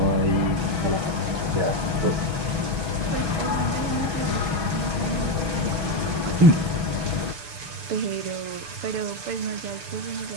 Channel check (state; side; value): late; left; 6.7 ms